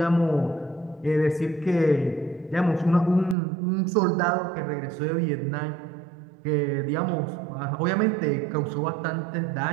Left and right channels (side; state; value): left; drops out; at 3.4 s